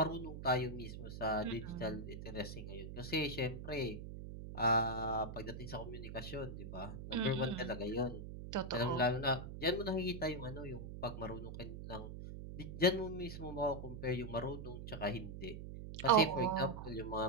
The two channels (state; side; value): noise; right; hum, 9 dB below the sound